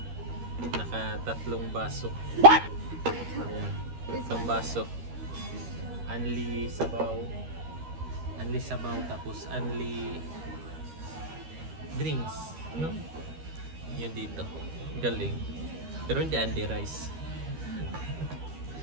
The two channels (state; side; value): late; left; 13 ms